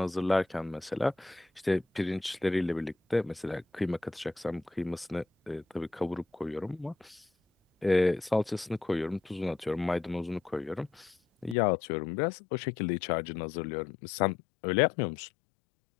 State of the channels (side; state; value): right; drops out; at 11.6 s